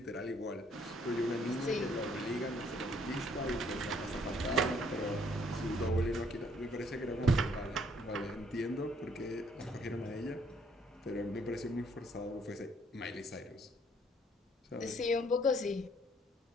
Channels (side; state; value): both; normal; correlation 0.65